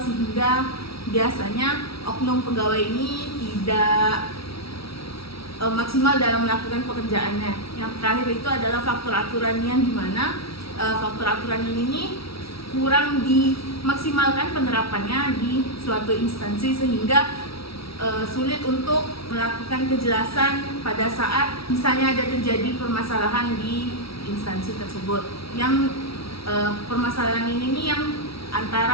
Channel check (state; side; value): late; right; 0.75 ms